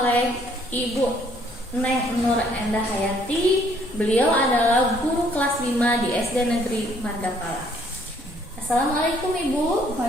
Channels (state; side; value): normal; both; correlation 0.64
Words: Ibu Neng Nur Endah Hayati. Beliau adalah guru kelas 5 di SD Negeri Margapala. Assalamualaikum Ibu.